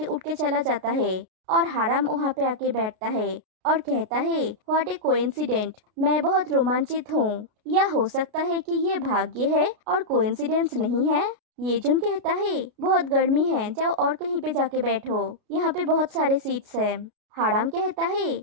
उठ के चला जाता है और हाराम वहाँ पे आके बैठता है और कहता है व्हाट ए कोइंसिडेंट, मैं बहुत रोमांचित हूँ। या हो सकता है कि ये भाग्य है और कोइंसिडेंस नहीं है। ये जुन कहता है बहुत गर्मी है, जाओ और कहीं पे जाके बैठो, यहाँ पे बहुत सारे सीट्स हैं। हाराम कहता है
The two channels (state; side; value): late; left; 33 ms